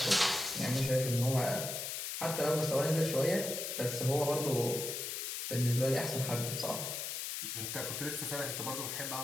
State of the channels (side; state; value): left; noise; hiss, 4 dB below the sound